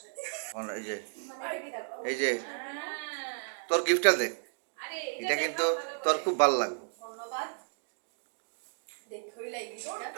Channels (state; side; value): silent; left; digital silence